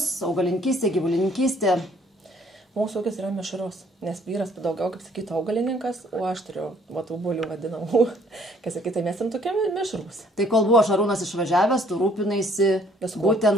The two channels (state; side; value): normal; both; correlation 0.62